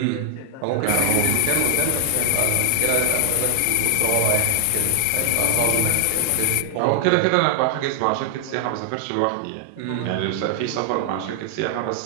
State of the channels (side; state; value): both; different; correlation 0.00